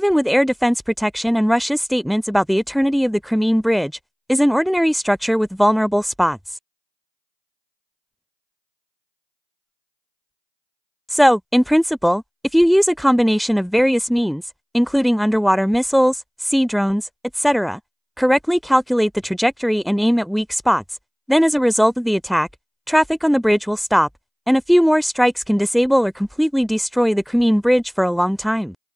with air defense protection and Russia's statements about the eternity of the Crimean Bridge, is an ordinary structure with vulnerable spots. So, in principle, if you use a combination of various means, including underwater missiles, sea drones, etc., correctly calculate the trajectory and aim at weak spots, then as a result of the attack, traffic on the bridge will stop, and a few more strikes can disable or completely destroy the Crimean Bridge for a long time.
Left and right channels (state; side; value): identical; both; correlation 1.00